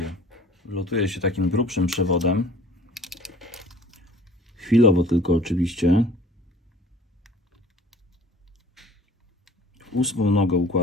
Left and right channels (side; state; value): both; normal; correlation 0.49